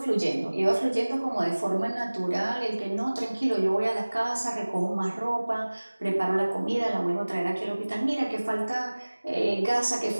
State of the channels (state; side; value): inverted; both; correlation -1.00